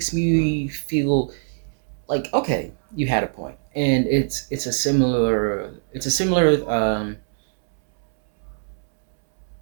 me feel like okay, you had a point, and it's a similar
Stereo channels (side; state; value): left; silent; 64 dB below the other